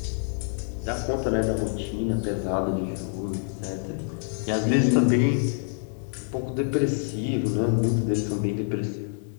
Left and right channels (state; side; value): silent; right; digital silence